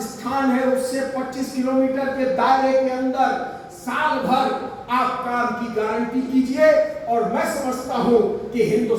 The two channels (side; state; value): both; identical; correlation 1.00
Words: स्थान है उससे 25 किलोमीटर के दायरे के अंदर साल भर आप काम की गारंटी कीजिए। और मैं समझता हूं कि